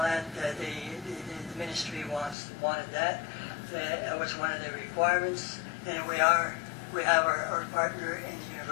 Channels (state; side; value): drops out; right; at 2.4 s